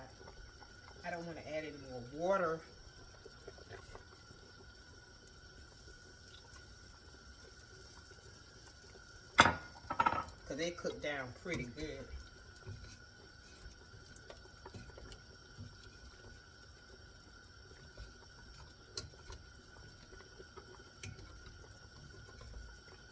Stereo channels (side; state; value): both; identical; correlation 1.00